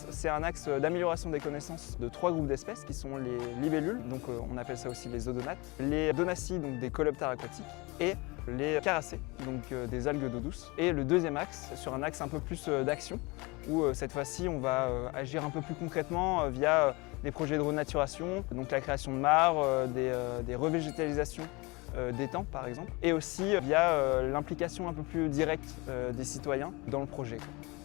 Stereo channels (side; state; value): right; quieter; 25.6 dB